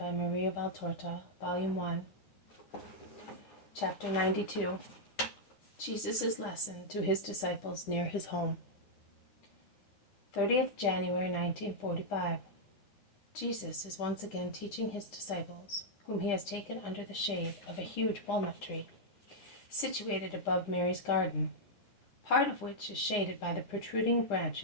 Maria Valtorta, Volume 1, Chapter 92. Jesus' Lesson to His Disciples Near His Home. 30th January 1945. Jesus is once again teaching His disciples, whom He has taken under the shade of a huge walnut tree, situated above Mary's garden, part of which is shaded by the protruding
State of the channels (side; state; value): right; late; 10 ms